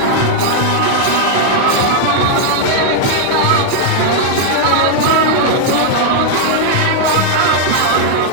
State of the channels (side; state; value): both; different; correlation 0.00